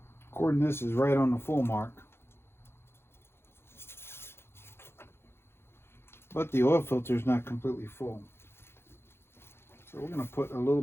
According to this is right on the full mark. But the oil filter is not completely full. So we're going to put a little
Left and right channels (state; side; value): late; right; 0.12 ms